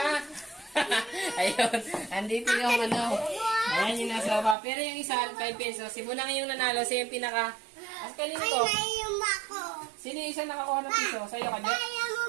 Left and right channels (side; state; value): left; drops out; at 4.5 s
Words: Ayun. Andito yung Ayan yung nasa baba. Pero yung isa, 5 pesos. Si Bunang yung nanalo. Siya yung pinaka... As kanino Ay, to? naiyung ako. Sino yung isa nakakuha ng piso? Sa'yo ka, Jet?